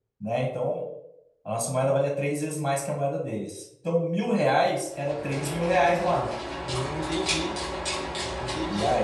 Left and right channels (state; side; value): identical; both; correlation 1.00